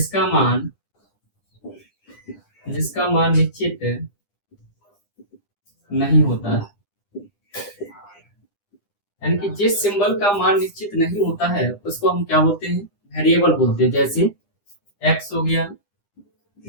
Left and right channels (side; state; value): right; late; 9.9 ms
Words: मान निश्चित नहीं होता है, यानी कि जिस सिंबल का मान निश्चित नहीं होता है उसको हम क्या बोलते हैं? वेरिएबल बोलते हैं। जैसे x हो गया,